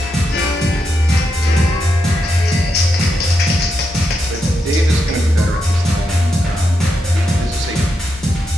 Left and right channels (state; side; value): normal; both; correlation 0.84